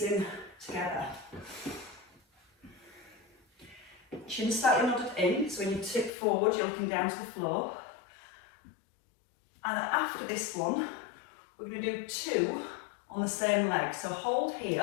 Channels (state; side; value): drops out; right; at 6.1 s